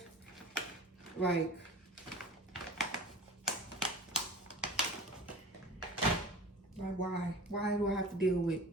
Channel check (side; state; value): both; normal; correlation 0.38